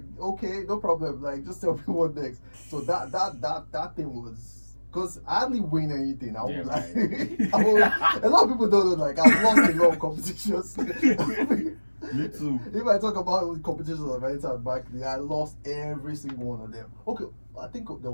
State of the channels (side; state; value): both; inverted; correlation -1.00